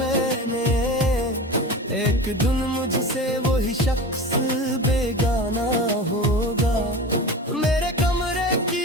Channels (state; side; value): normal; both; correlation 0.31